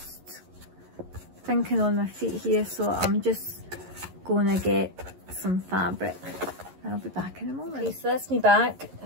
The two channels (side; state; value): left; late; 11 ms